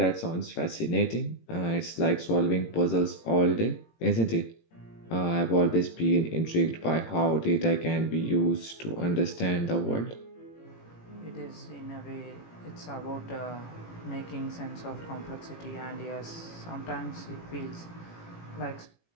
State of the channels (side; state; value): right; late; 18 ms